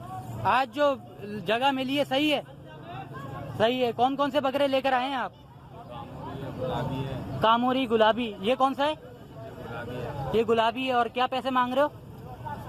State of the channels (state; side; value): identical; both; correlation 1.00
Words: आज जो जगह मिली है सही है? सही है। कौन कौन से बकरे लेकर आए हैं आप? गुलाबी है। कामोरी गुलाबी। ये कौन सा है? गुलाबी है। ये गुलाबी है। और क्या पैसे मांग रहे हो?